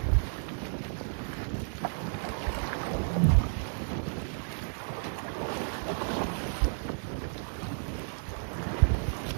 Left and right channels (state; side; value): silent; left; digital silence